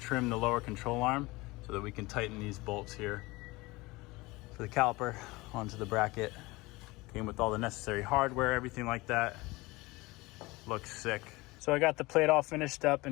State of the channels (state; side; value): quieter; right; 22.0 dB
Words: the lower control arm so that we can tighten these bolts here for the caliper onto the bracket. Came with all the necessary hardware, everything like that. Looks sick. So I got the plate all finished up